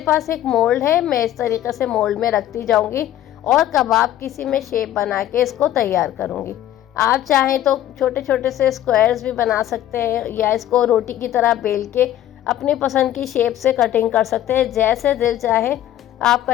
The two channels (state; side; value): quieter; right; 12.3 dB